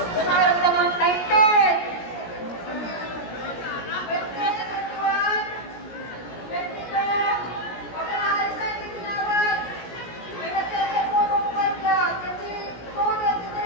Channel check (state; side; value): late; right; 17 ms